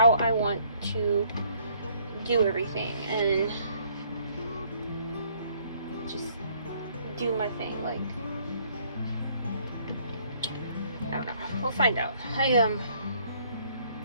I want to do everything and just do my thing. Like, I don't know. We'll find out.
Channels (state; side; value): inverted; both; correlation -0.64